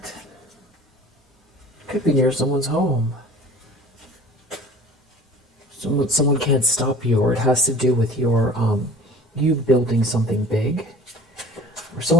Could be near someone's home. Someone can't stop you, or it has to do with your you building something big. Or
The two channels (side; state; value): both; normal; correlation 0.45